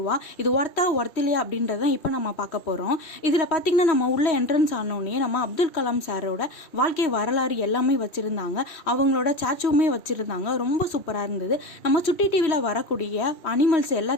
ரூபா. இது ஒர்த்தில்லையா அப்படின்றத இப்போ நம்ம பார்க்க போகிறோம். இதில் பார்த்தீங்கன்னா நம்ம உள்ள என்ட்ரன்ஸ் ஆனோடனே நம்ம அப்துல் கலாம் சாரோட வாழ்க்கை வரலாறு எல்லாமே வச்சுருந்தாங்க. அவங்களோட ஸ்டாச்சுவுமே வச்சுருந்தாங்க. ரொம்ப சூப்பராக இருந்தது. நம்ம சுட்டி டிவியில் வரக்கூடிய அனிமல்ஸ்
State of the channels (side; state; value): right; late; 3.1 ms